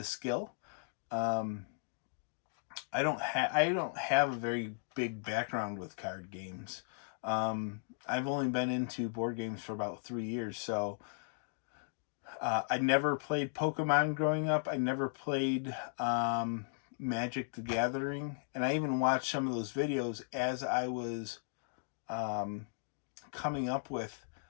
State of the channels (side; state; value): right; silent; digital silence